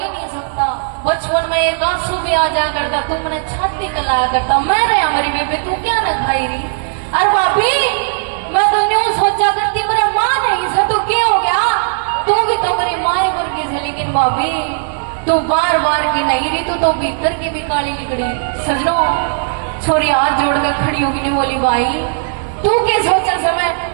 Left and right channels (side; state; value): left; silent; digital silence